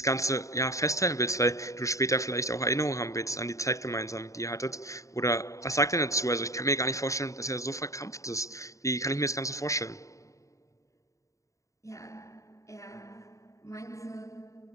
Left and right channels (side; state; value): right; late; 0.16 ms